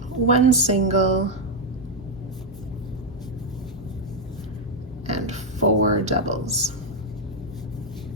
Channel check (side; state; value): both; normal; correlation 0.01